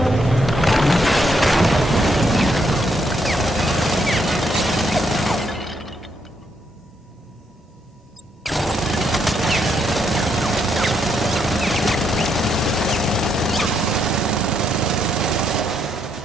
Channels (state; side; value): normal; both; correlation 0.76